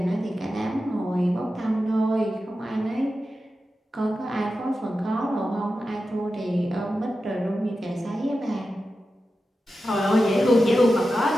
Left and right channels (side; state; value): both; normal; correlation 0.91